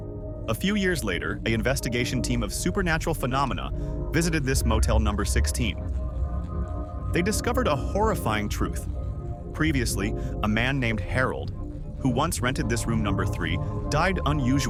A few years later, an investigation team of supernatural phenomena visited this Motel No. 16. They discovered a horrifying truth. Previously, a man named Harold, who once rented this room number 3, died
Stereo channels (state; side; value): identical; both; correlation 1.00